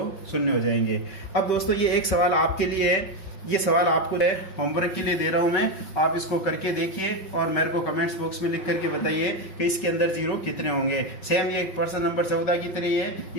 शून्य हो जाएंगे। अब दोस्तों ये एक सवाल आपके लिए है, ये सवाल आपको होमवर्क के लिए दे रहा हूं मैं, आप इसको करके देखिए और मेरे को कमेंट्स बॉक्स में लिख करके बताइए कि इसके अंदर 0 कितने होंगे। सेम ये प्रश्न नंबर 14 की तरह है,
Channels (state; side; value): late; right; 5.2 ms